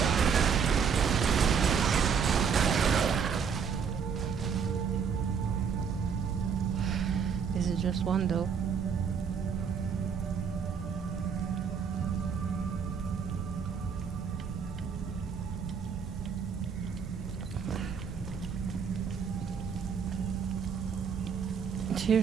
This is just one though. It's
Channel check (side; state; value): left; quieter; 6.6 dB